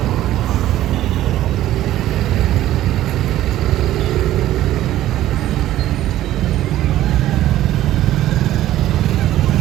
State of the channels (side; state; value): left; quieter; 13.8 dB